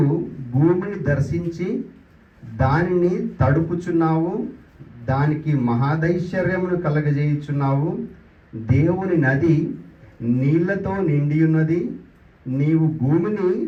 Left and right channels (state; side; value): identical; both; correlation 1.00